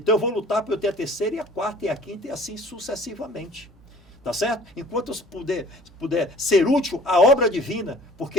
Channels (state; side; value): normal; both; correlation 0.50